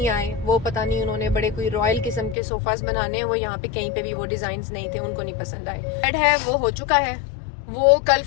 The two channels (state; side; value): drops out; right; at 2.4 s